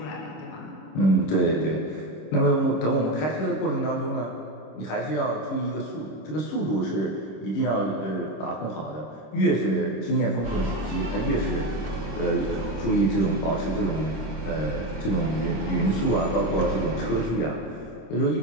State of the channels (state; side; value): late; right; 26 ms